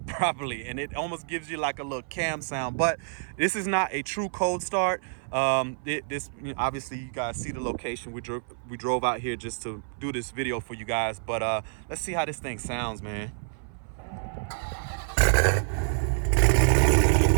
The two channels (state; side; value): silent; left; 57 dB below the other